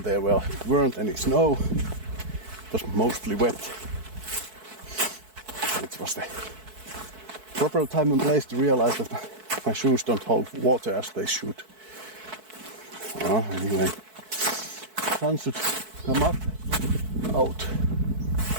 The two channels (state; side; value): late; left; 4.6 ms